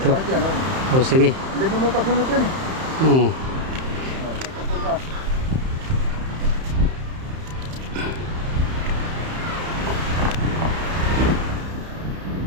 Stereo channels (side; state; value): left; late; 31 ms